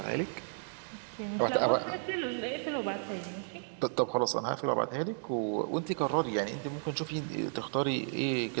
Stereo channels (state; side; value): silent; left; digital silence